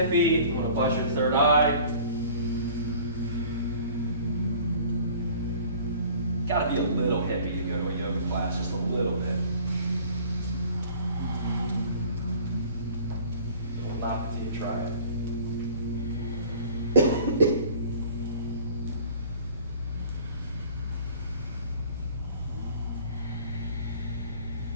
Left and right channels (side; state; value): both; inverted; correlation -0.48